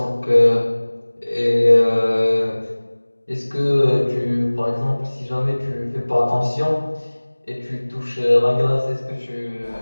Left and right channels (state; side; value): inverted; both; correlation -1.00